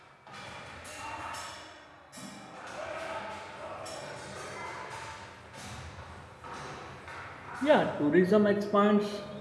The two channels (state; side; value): identical; both; correlation 1.00